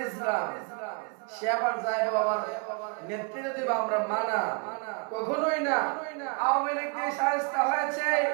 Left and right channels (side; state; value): left; quieter; 33.3 dB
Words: ইসলাম সে আবার যায় বাবার নেতৃত্ব দিব আমরা, মানা কখনোই না। আওয়ামী লীগ দিয়ে শায়েস্তা হয়েছে